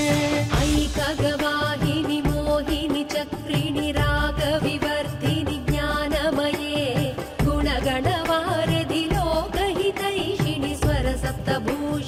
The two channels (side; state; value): both; identical; correlation 1.00